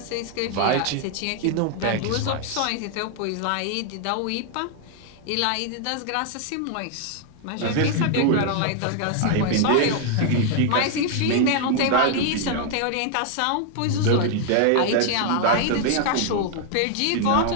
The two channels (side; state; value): both; different; correlation 0.00